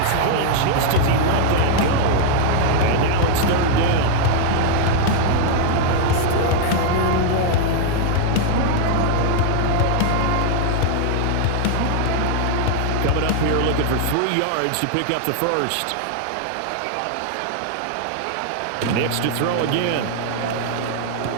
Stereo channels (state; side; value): different; both; correlation 0.00